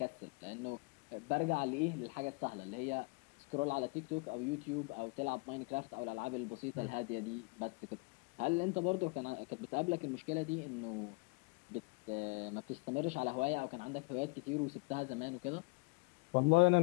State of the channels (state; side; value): quieter; right; 29.6 dB